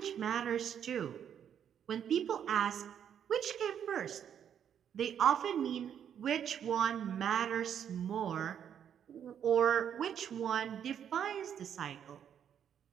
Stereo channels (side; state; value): left; quieter; 8.8 dB